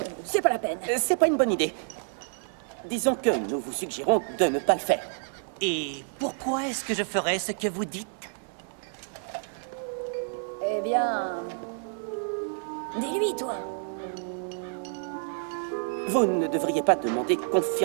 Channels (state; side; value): silent; left; 59 dB below the other